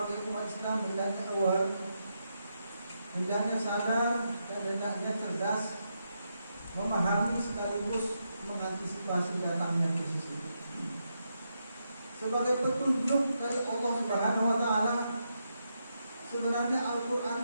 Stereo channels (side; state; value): both; inverted; correlation -0.83